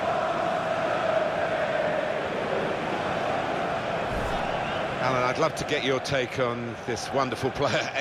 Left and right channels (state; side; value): identical; both; correlation 1.00